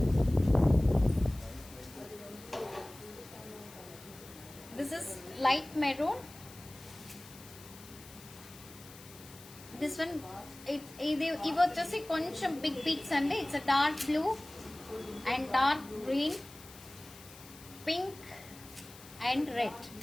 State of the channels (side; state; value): left; noise; hiss, 19 dB below the sound